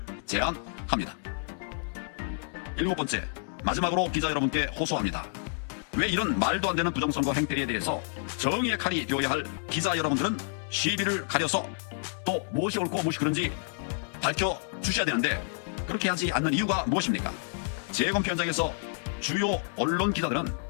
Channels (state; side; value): silent; right; digital silence